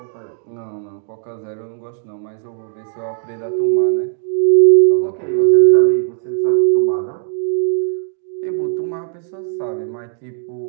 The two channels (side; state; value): left; silent; digital silence